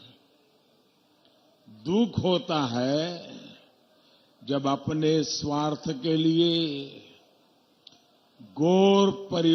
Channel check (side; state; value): both; identical; correlation 1.00